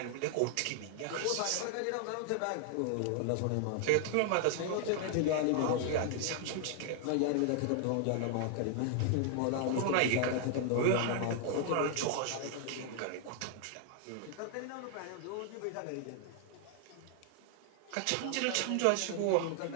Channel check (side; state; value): both; different; correlation 0.00